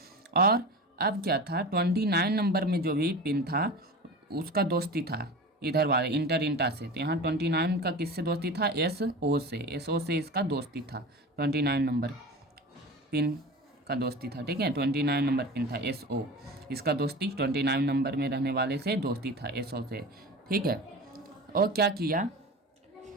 और अब क्या था, 29 नंबर में जो भी पिन था उसका दोस्ती था इधर वाले इंटर इंटा से, तो यहाँ 29 का किससे दोस्ती था, SO से इसका दोस्ती था, 29 नंबर पिन का दोस्ती था, ठीक है। 29 नंबर पिन था SO, इसका दोस्ती 29 नंबर में रहने वाले से दोस्ती था, SO से, ठीक है। और क्या किया,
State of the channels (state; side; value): normal; both; correlation 0.32